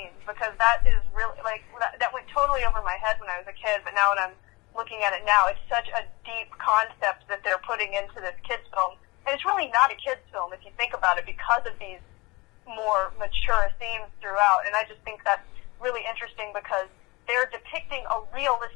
because that is really, like, that went totally over my head when I was a kid, but now when I'm looking at it now, it's such a deep concept that they're putting into this kids film. And it's really not a kids film if you think about it, because of these more mature themes throughout. And I just think that's really interesting, because they're depicting a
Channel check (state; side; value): quieter; right; 24.1 dB